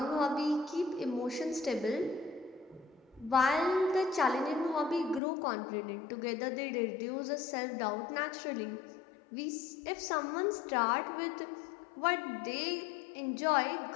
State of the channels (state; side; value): drops out; right; at 5.2 s